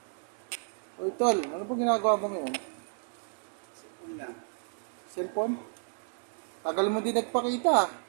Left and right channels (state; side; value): silent; left; digital silence